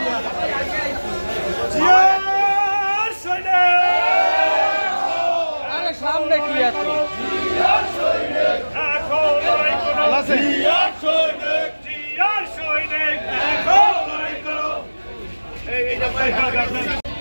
সামনে কি এত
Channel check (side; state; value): both; inverted; correlation -1.00